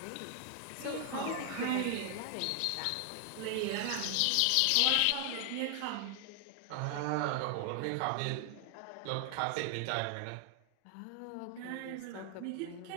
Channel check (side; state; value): both; different; correlation 0.00